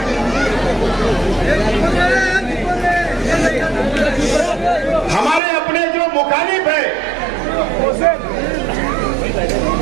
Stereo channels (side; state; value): left; drops out; at 5.4 s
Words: हमारे अपने जो मुखालिफ है,